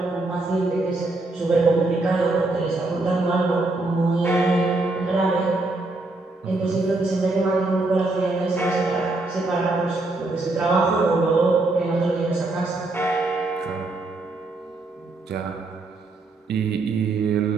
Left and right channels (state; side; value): quieter; left; 3.1 dB